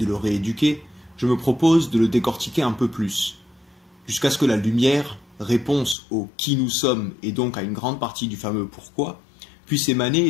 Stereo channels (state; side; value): drops out; right; at 6.0 s